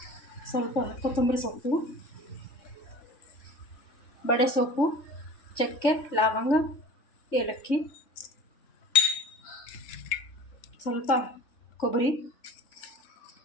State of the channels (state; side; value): late; right; 3.4 ms